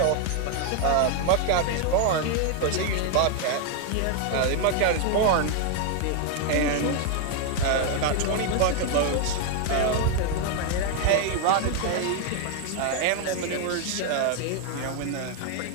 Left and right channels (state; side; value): different; both; correlation 0.01